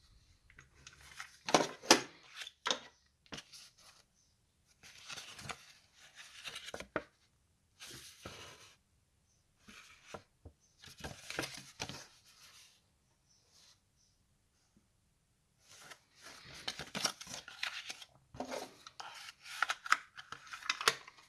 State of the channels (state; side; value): identical; both; correlation 1.00